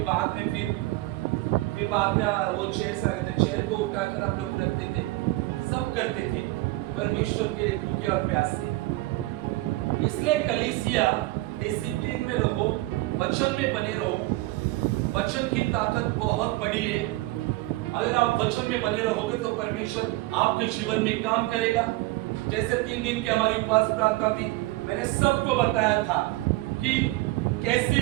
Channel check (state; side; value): quieter; left; 19.4 dB